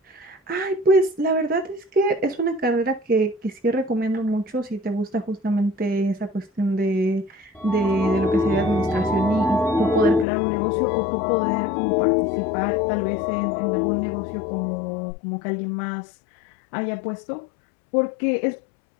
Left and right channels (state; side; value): drops out; right; at 10.2 s